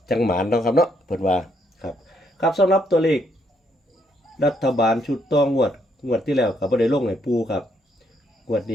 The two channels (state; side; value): normal; both; correlation 0.73